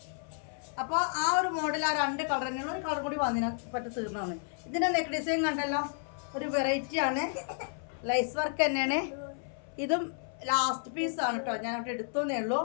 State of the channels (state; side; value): silent; right; 57 dB below the other